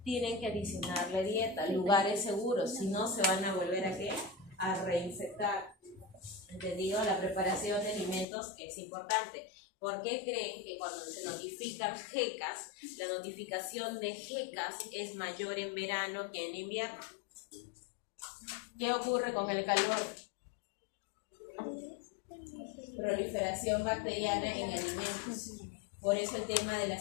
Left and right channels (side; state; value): right; drops out; at 8.2 s